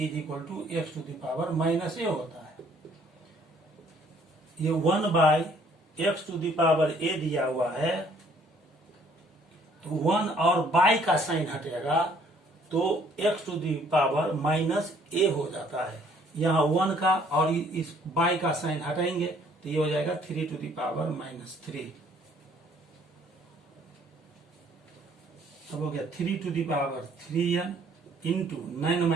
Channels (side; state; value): both; normal; correlation 0.61